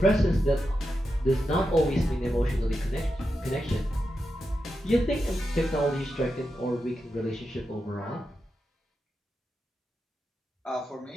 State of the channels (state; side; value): normal; both; correlation 0.88